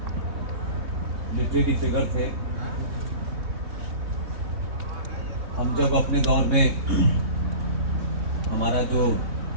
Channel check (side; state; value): left; late; 3.6 ms